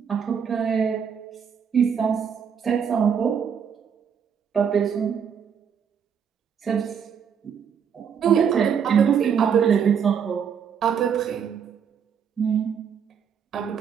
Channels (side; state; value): left; quieter; 7.4 dB